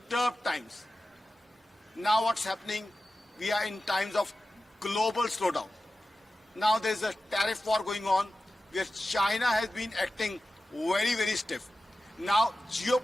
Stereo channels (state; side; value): normal; both; correlation 0.94